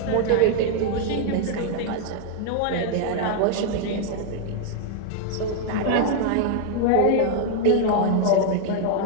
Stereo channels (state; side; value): different; both; correlation 0.00